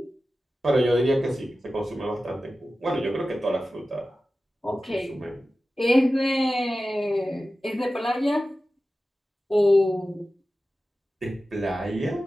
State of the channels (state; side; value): normal; both; correlation 0.94